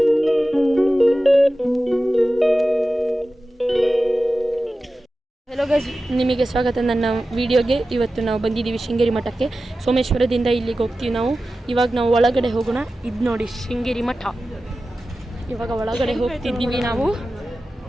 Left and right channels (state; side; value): normal; both; correlation 0.94